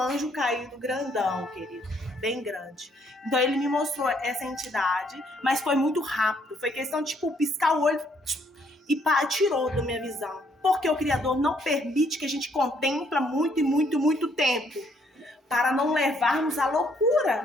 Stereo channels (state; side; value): normal; both; correlation 0.68